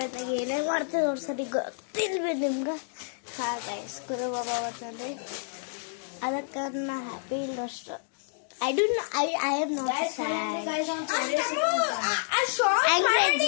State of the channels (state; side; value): silent; right; digital silence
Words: ಏನೇ ಮಾಡ್ತೀವಿ ಅವ್ರ ಸರಿ ಗೊತ್ತಿಲ್ವಿ ನಿಮ್ಗೆ. ಹಾ ಗೈಸ್, ಗುರು ಬಾಬಾ ಬಂತಂದ್ರೆ ಅದಕ್ಕೆ ನಾ ಹ್ಯಾಪಿ ಇಲ್ಲ ಅಷ್ಟು. I don't I am not sad.